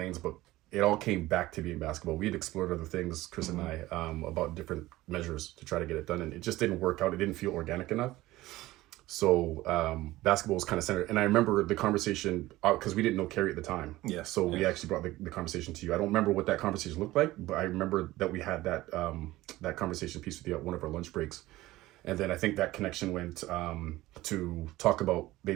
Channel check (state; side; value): quieter; left; 17.5 dB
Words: but it all came back to being basketball. We had explored other things, Chris and I, about different measures to try to get it done. And it just didn't work out. It didn't feel organic enough. So basketball was kind of centered. And I remember the conversation, because we didn't know Carrie at the time. Yeah. So we actually brought the conversation to you. I don't remember what that conversation looked like, but I remember that we had that that conversation piece with you at one of our lunch breaks. And then I think that connection went to talk about